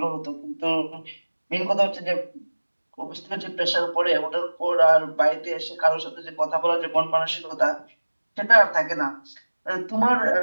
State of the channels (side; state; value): both; inverted; correlation -1.00